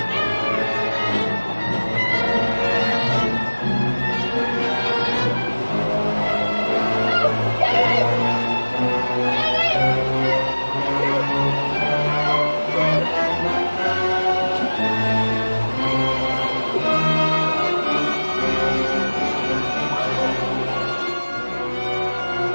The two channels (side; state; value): both; inverted; correlation -1.00